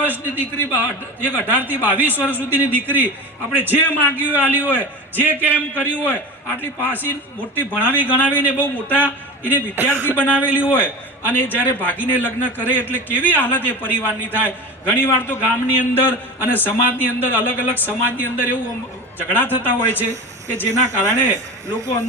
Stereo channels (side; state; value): both; normal; correlation 0.30